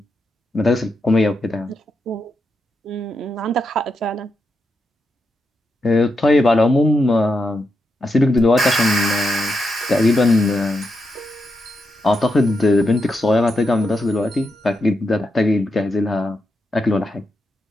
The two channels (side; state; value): both; normal; correlation 0.84